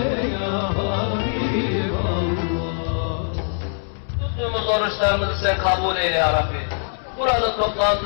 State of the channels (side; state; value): right; silent; 64 dB below the other